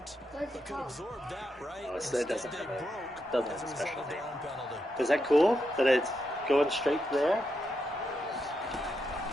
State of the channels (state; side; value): normal; both; correlation 0.83